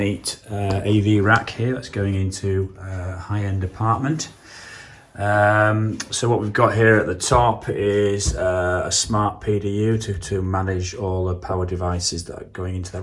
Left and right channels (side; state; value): both; identical; correlation 1.00